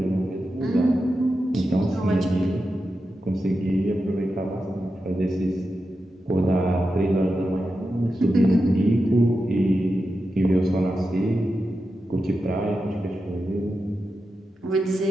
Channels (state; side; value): normal; both; correlation 0.90